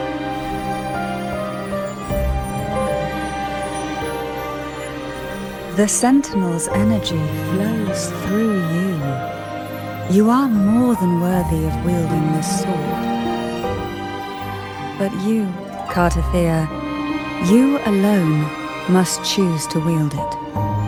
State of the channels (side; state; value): both; identical; correlation 1.00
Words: The Sentinel's energy flows through you. You are more than worthy of wielding this sword. But you, Cartathea, you alone must choose to wield it.